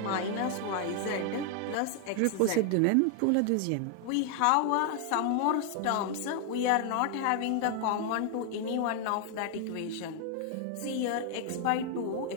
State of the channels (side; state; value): both; different; correlation 0.00